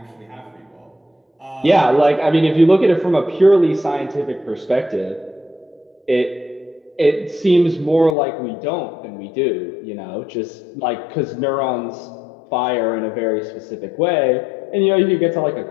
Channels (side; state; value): right; drops out; at 8.2 s